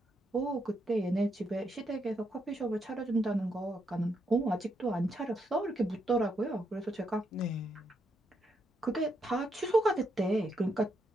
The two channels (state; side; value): normal; both; correlation 0.79